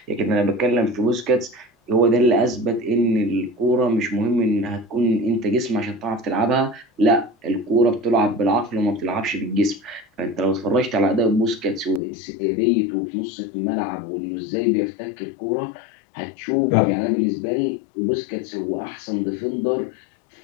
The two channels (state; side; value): drops out; right; at 12.0 s